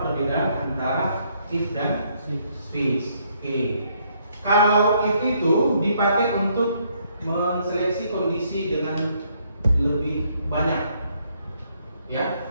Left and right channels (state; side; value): inverted; both; correlation -0.70